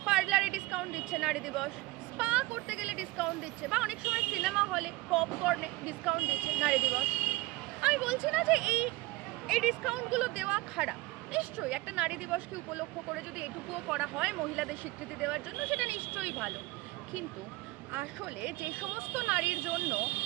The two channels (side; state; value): left; quieter; 20.5 dB